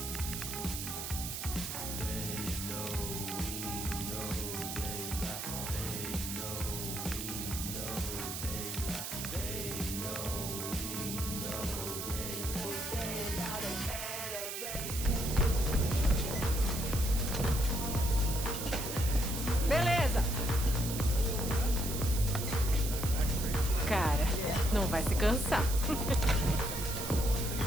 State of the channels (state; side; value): noise; right; hiss, 5 dB below the sound